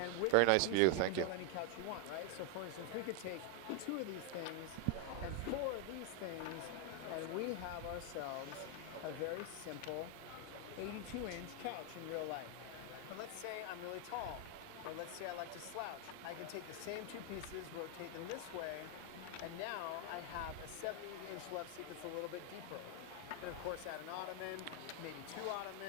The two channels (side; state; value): both; different; correlation 0.00